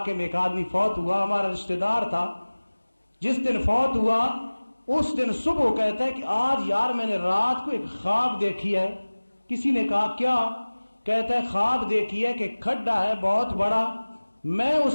میں ایک آدمی فوت ہوا، ہمارا رشتہ دار تھا. جس دن فوت ہوا اس دن صبح کہتا ہے کہ آج یار میں نے رات کو ایک خواب دیکھی ہے. کسی نے کہا کیا؟ کہتا ہے خواب دیکھی ہے کہ کھڈا ہے بہت بڑا، میں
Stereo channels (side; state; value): both; inverted; correlation -1.00